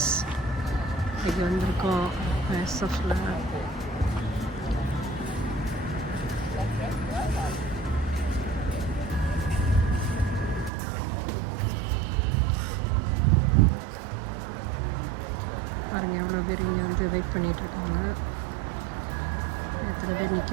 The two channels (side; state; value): left; drops out; at 10.7 s